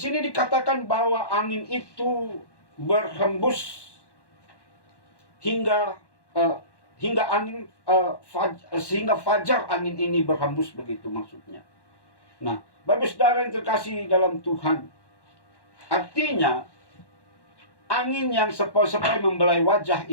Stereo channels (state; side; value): late; right; 1.1 ms